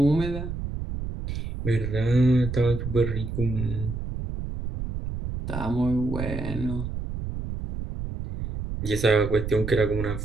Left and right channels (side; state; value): right; noise; rumble, 6 dB below the sound